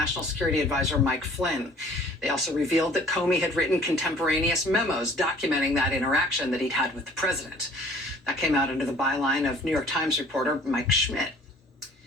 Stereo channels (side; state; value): both; normal; correlation 0.52